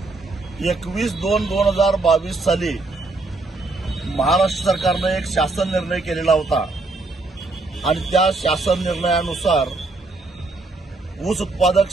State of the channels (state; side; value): quieter; left; 3.3 dB